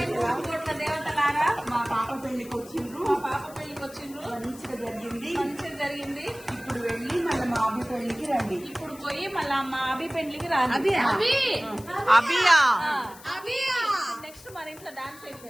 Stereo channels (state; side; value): noise; left; hiss, 20 dB below the sound